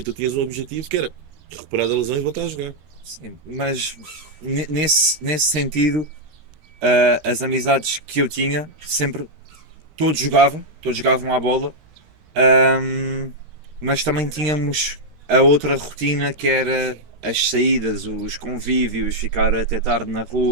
tu tinhas um objetivo que era recuperar da lesão e voltar a jogar. Sim, mas nesse sentido, as amizades que eu tinha sempre todos jogavam à bola, ahm, mas também tínhamos a outra rotina que era as saídas, os convívios, ficar até tarde na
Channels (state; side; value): late; left; 13 ms